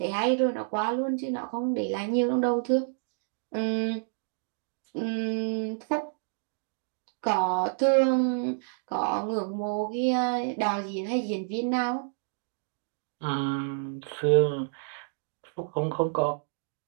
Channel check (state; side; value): silent; left; digital silence